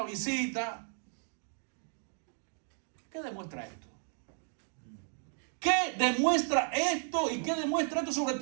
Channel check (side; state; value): left; silent; 55 dB below the other